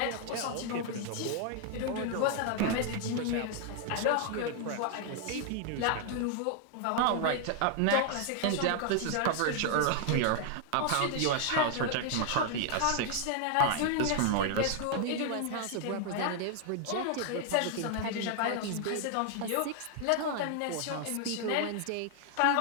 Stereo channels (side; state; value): both; different; correlation 0.00